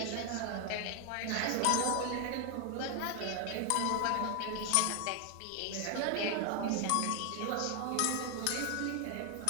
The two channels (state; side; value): different; both; correlation 0.00